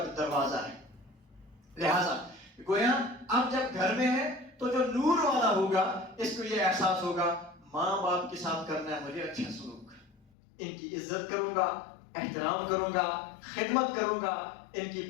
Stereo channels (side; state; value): right; drops out; at 10.2 s